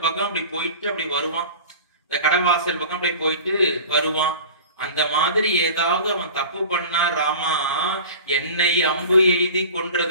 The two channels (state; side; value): inverted; both; correlation -0.38